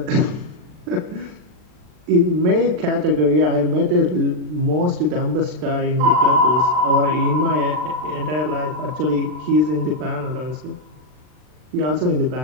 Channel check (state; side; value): late; left; 39 ms